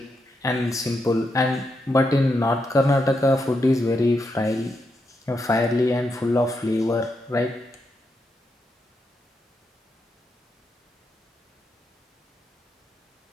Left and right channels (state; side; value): normal; both; correlation 0.83